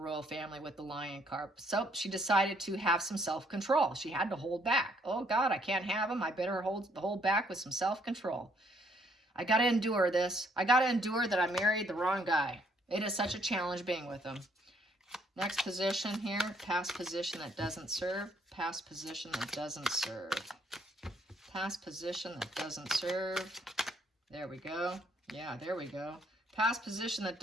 family with the lion card. So she decided to have some self-control. She had to hold back. Oh God, I can't have him. I better hold back with some self-control. I got to endure this. I got to endure that I married the wrong guy. It is such a challenge being with him. Next position here, past position that doesn't serve. Past position that doesn't serve. Past position that doesn't serve. There we go. Yeah, there we go. Past position that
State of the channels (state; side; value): normal; both; correlation 0.68